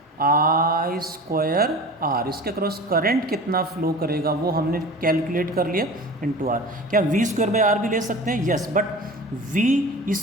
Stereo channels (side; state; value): both; normal; correlation 0.37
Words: I square R. इसके अक्रॉस करंट कितना फ्लो करेगा वो हमने कैलकुलेट कर लिया इनटू आर। क्या वी स्क्वायर बाई आर भी ले सकते हैं, यस, बट वी